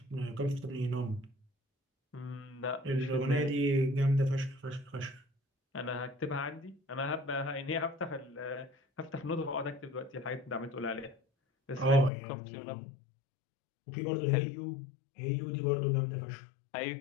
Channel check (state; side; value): drops out; right; at 12.1 s